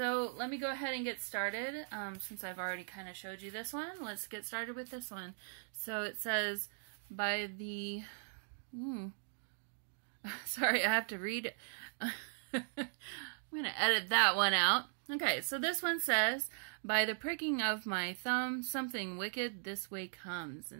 let me go ahead and get started. Since I've already kind of showed you this one, let's get started with this one. So it says by the sorry, I have to read it. I'm going to edit that one out. Okay, so this one says, by the pricking of my thumb, something wicked this way comes.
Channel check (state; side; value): silent; left; digital silence